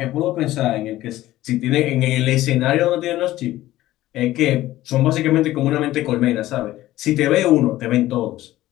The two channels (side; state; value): right; quieter; 15.5 dB